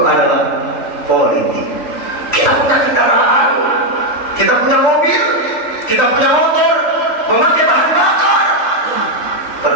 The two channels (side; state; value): right; late; 3.1 ms